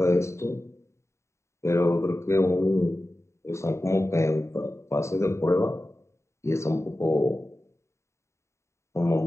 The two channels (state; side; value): late; right; 0.14 ms